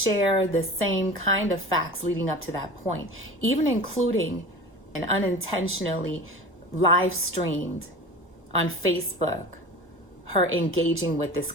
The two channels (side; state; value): both; normal; correlation 0.35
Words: the same kind of facts leading up to that point, even including and unintentionally live streamed on Facebook her engaging with this